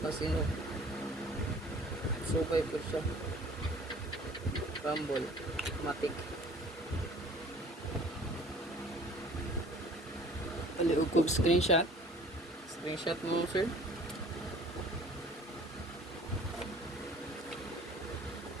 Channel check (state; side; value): normal; both; correlation 0.51